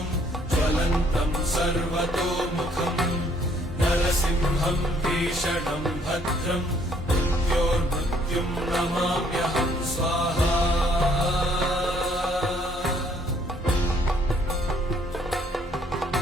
ज्वलन्तं सर्वतोमुखं नरसिंहं भीषणं भद्रं मृत्योर्मृत्युं नमाम्यहं स्वाहा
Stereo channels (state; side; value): normal; both; correlation 0.64